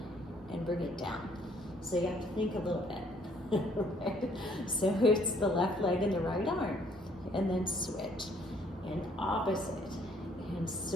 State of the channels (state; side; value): normal; both; correlation 0.63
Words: and bring it down. So you have to think a little bit. Right? So it's the left leg and the right arm, and then switch, and opposite, and